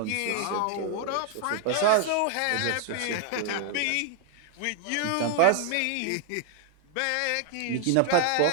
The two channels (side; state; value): both; different; correlation 0.00